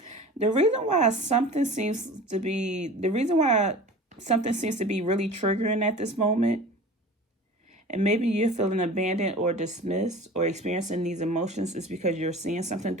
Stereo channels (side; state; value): both; normal; correlation 0.39